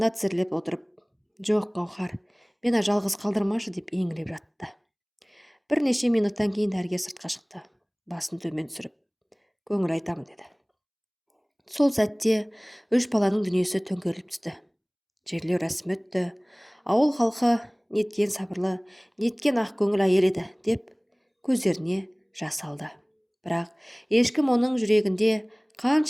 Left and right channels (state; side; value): identical; both; correlation 1.00